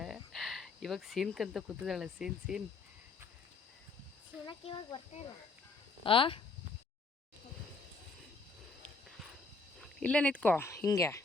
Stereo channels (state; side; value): quieter; right; 4.0 dB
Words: ಇವಾಗ ಸೀನ್ಕಂತ ಕೂತಿದ್ದಾಳೆ. ಸೀನ್ ಇವಾಗ ಬರ್ತಾ ಇಲ್ಲ. ಆ ಇಲ್ಲೇ ನಿಂತ್ಕೋ ಹಿಂಗೆ